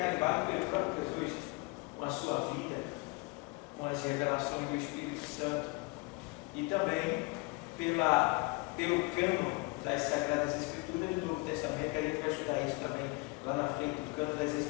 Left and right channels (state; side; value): quieter; right; 27.3 dB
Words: carimbado pelo próprio Jesus, com a sua vida, com as revelações do Espírito Santo e também pelo cânon das Sagradas Escrituras do Novo Testamento, que a gente vai estudar isso também lá na frente, o cânon das